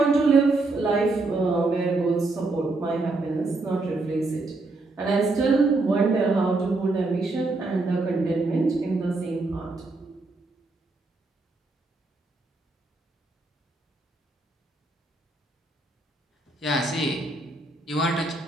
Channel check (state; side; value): quieter; left; 3.2 dB